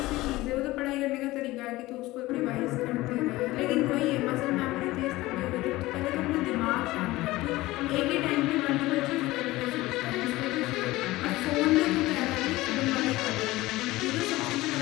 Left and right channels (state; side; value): quieter; right; 18.7 dB